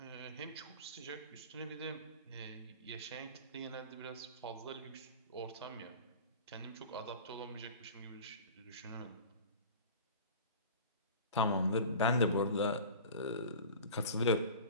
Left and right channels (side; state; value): both; inverted; correlation -0.37